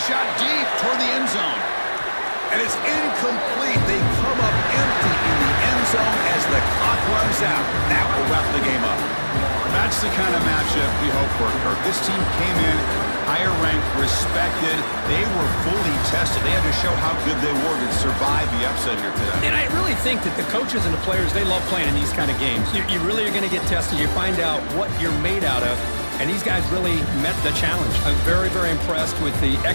shot deep toward the end zone. And it's incomplete. They come up empty in the end zone as the clock runs out. That will wrap the game up. That's the kind of matchup we hope for, Kirk. This team came in higher ranked, respected. They were fully tested. They had to show how good they were to survive the upset here today. And I really think that the coaches and the players, they love playing in these kind of games. You really are going to get tested. You find out what you're made out of. And these guys really met the challenge. I'm very, very impressed with the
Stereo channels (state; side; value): inverted; both; correlation -1.00